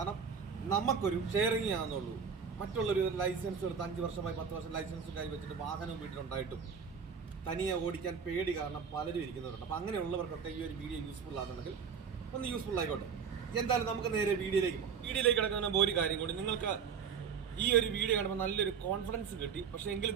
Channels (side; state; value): left; quieter; 6.5 dB